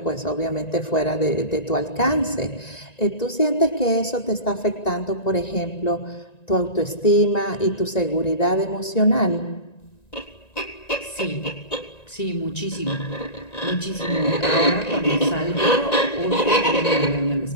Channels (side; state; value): right; late; 1.9 ms